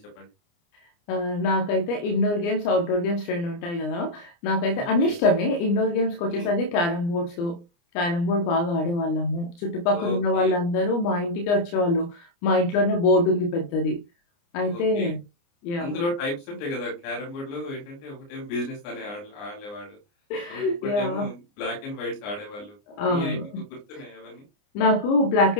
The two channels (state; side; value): late; right; 29 ms